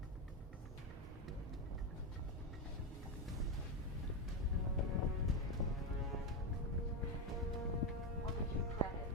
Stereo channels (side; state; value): both; normal; correlation 0.08